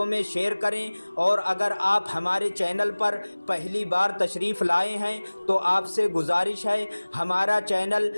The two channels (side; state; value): both; inverted; correlation -1.00